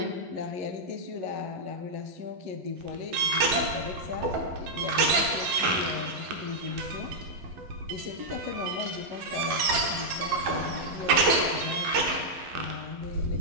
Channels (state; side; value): late; left; 12 ms